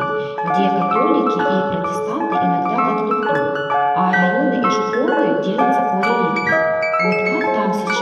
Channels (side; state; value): both; identical; correlation 1.00